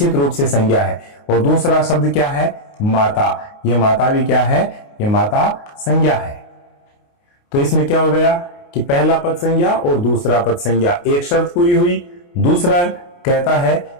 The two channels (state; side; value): late; right; 29 ms